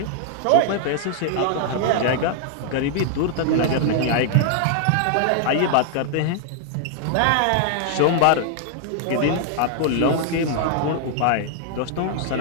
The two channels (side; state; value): both; different; correlation 0.00